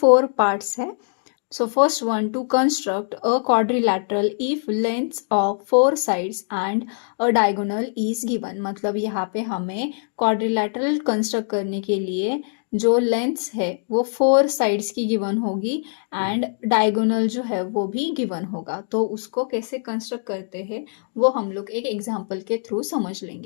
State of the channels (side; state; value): right; silent; digital silence